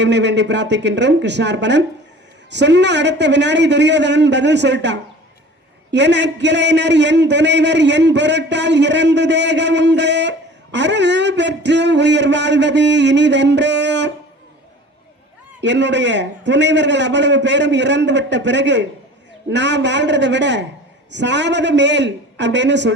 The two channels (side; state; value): both; normal; correlation 0.44